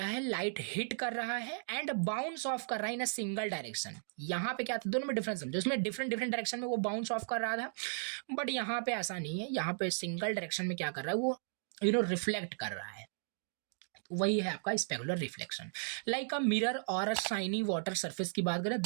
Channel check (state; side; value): silent; left; digital silence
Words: है, लाइट हिट कर रहा है एंड बाउंस ऑफ कर रहा है इन अ सिंगल डायरेक्शन। यहाँ पे क्या था, दोनों में डिफरेंस समझो, उसमें डिफरेंट डिफरेंट डायरेक्शन में वो बाउंस ऑफ कर रहा था, बट यहाँ पे ऐसा नहीं है, यहाँ पे सिंगल डायरेक्शन में क्या कर रहा है, वो रिफ्लेक्ट कर रहा है। तो वही है आपका specular reflection. Like a mirror और अ शाइनी वाटर सरफेस की बात करें,